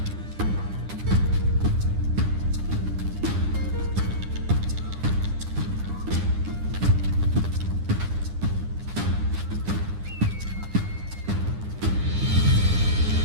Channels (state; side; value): late; left; 9.9 ms